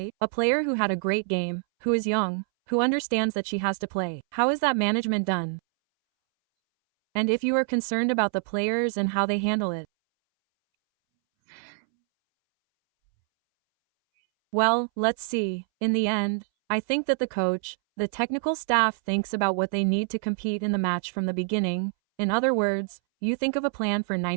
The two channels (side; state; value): left; silent; 61 dB below the other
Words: A player who had a great game, who is young, who understands that she has to play. How is that management done? And if you are concerned about the players and how they handle it. Well, let's see. In the end, I think that the coach, the technical staff thinks about what they need to compete in the match from the beginning. In other words, you think of a plan for